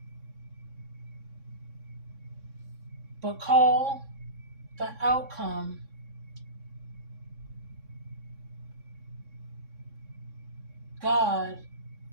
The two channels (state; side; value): late; left; 3.6 ms